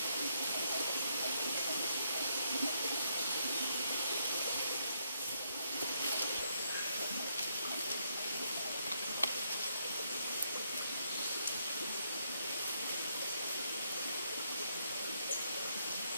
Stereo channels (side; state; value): both; inverted; correlation -0.76